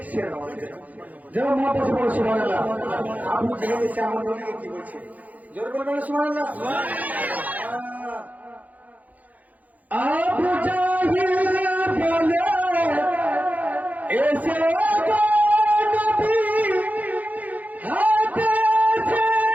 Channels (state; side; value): late; left; 0.078 ms